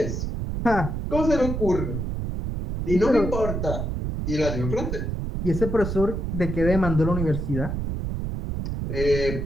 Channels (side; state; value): right; noise; rumble, 3 dB below the sound